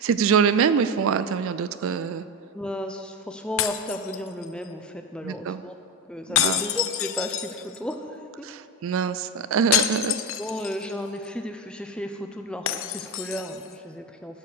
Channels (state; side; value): normal; both; correlation 0.16